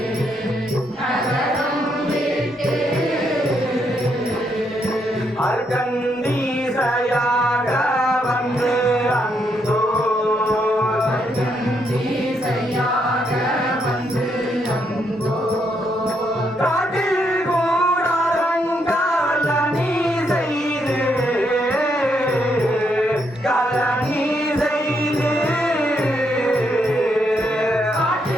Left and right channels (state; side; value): normal; both; correlation 0.76